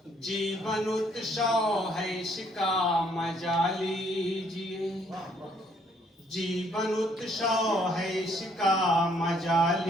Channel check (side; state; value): both; normal; correlation 0.66